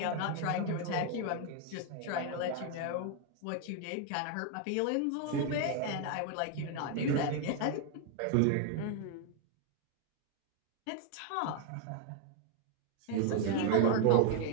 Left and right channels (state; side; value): different; both; correlation 0.01